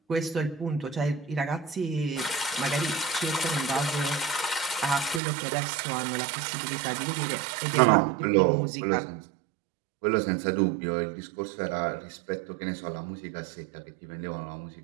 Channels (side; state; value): left; drops out; at 5.2 s